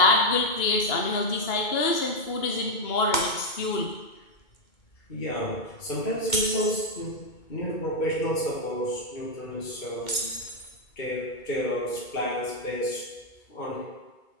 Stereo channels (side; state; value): right; late; 2.2 ms